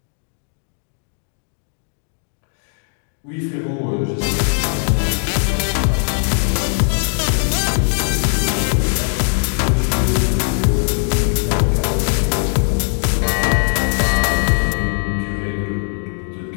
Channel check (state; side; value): silent; right; 62 dB below the other